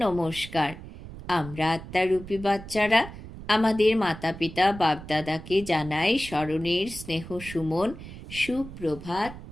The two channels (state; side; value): noise; right; rumble, 13 dB below the sound